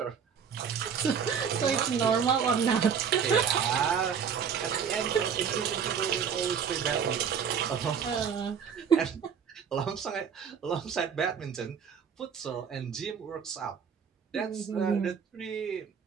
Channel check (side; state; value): left; quieter; 7.1 dB